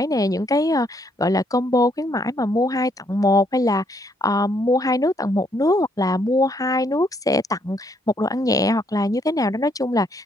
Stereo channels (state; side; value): normal; both; correlation 0.71